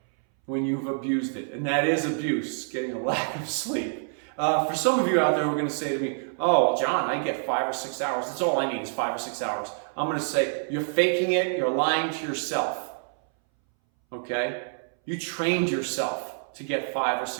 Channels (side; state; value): left; silent; 60 dB below the other